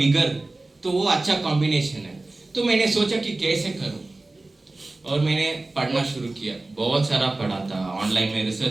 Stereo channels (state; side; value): quieter; left; 3.0 dB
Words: तो वो अच्छा कॉम्बिनेशन है। तो मैंने सोचा कि कैसे करूं, और मैंने पढ़ना शुरू किया, बहुत सारा पढ़ा था, ऑनलाइन में